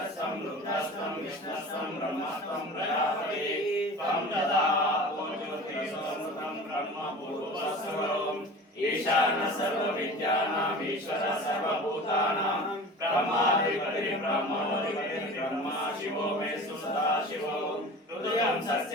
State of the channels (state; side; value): normal; both; correlation 0.38